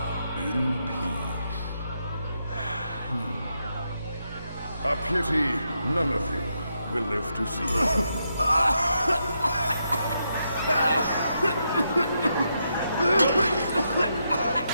in peace. A pity none of you will live to see it.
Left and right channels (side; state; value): both; inverted; correlation -0.82